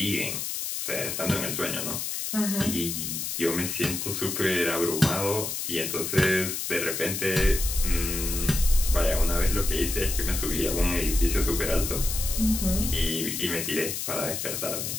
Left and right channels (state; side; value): noise; left; hiss, 3 dB below the sound